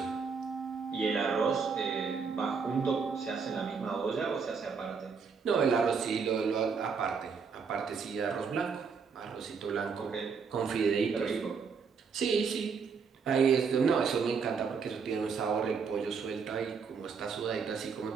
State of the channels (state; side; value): quieter; left; 5.7 dB